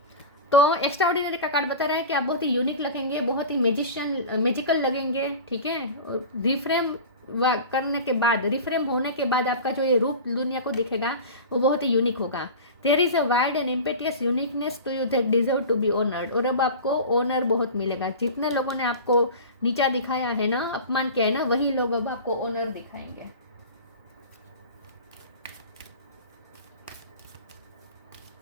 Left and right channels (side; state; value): both; inverted; correlation -0.33